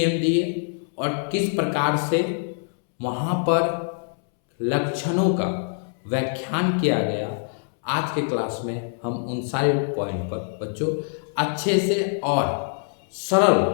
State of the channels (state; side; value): silent; right; 62 dB below the other